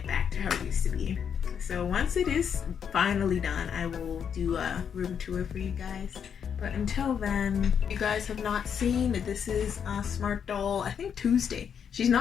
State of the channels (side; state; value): right; quieter; 7.6 dB